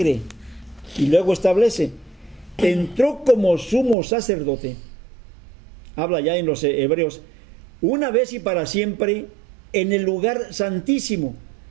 Y luego establece, entró como sumo sacerdote, habla ya en los Hebreos, una vez y para siempre, en el lugar santísimo,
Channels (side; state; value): left; drops out; at 4.0 s